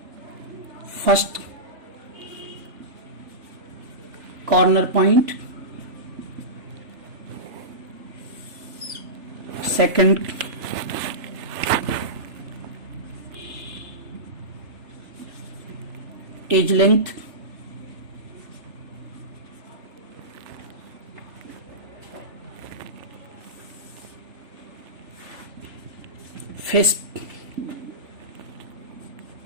first corner point, second edge length, face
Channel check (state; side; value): late; left; 3.4 ms